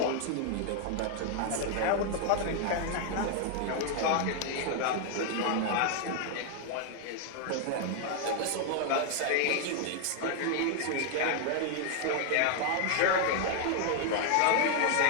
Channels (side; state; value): both; different; correlation 0.00